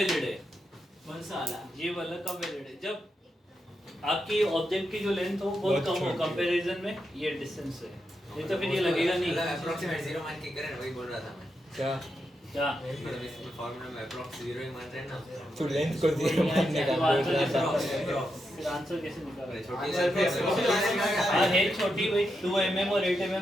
है? कौन सा वाला ये वाला कब वैलिड है? जब आपकी ऑब्जेक्ट की जो लेंथ हो बहुत कम हो कंपैरिजन में ये डिस्टेंस है, नहीं तो फिर ये लगेगा नहीं। अप्रोक्सीमेट 0 मान के करे ना, वही बोल रहा था मैं। क्या क्या मतलब इसमें फार्मूला में अप्रोक्स 0 ही मान रहे हैं ना। तू लेंथ को 0 मानने का बोल रहा था। फिर आंसर कैसे निकाला? छोटी सी हाँ है छोटी भाई, 2 mm और 8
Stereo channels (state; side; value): normal; both; correlation 0.85